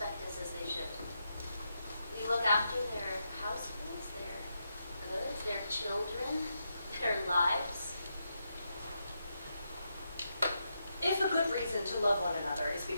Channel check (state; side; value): inverted; both; correlation -0.83